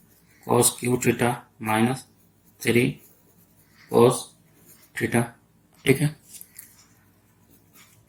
cos Q theta minus 3 cos theta. ठीक है,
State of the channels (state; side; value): identical; both; correlation 1.00